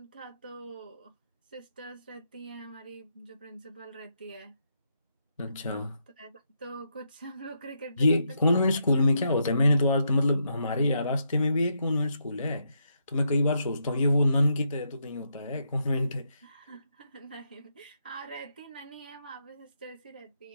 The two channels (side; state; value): both; inverted; correlation -0.79